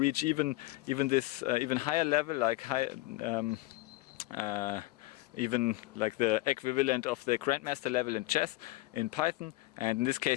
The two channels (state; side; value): quieter; right; 19.2 dB